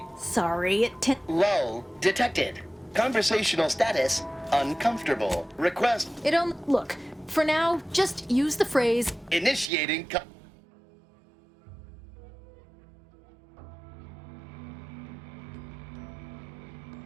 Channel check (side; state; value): left; drops out; at 9.7 s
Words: Sorry, Lull detected. Conversational status, uncomfortable. Request... Look, for now, just use the phrase... Initiating...